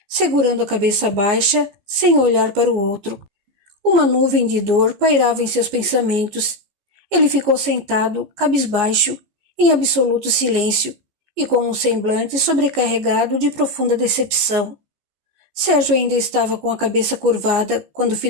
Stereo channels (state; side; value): late; left; 14 ms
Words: segurando a cabeça baixa, sem olhar para o outro. Uma nuvem de dor pairava em seus pensamentos. Ele ficou sentado, cabisbaixo, em absoluto silêncio, e com um semblante sobrecarregado de profunda decepção. Sérgio ainda estava com a cabeça curvada quando